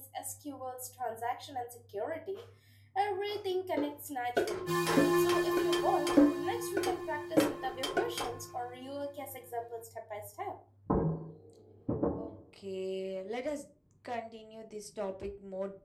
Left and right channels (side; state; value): both; identical; correlation 1.00